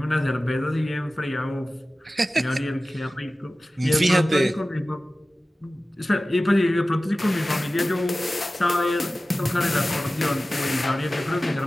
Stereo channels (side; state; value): both; normal; correlation 0.96